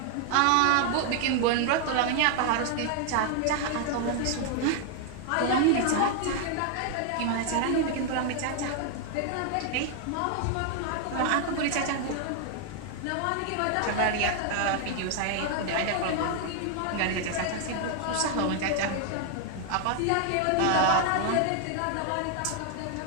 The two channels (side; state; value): both; different; correlation 0.00